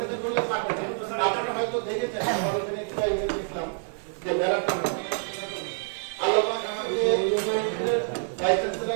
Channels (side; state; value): left; silent; 60 dB below the other